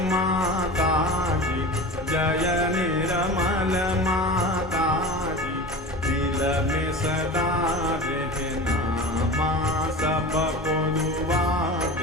माता जी, जय निरमल माता जी, दिल में सदा रहना माँ, सबको दुआ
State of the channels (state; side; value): normal; both; correlation 0.33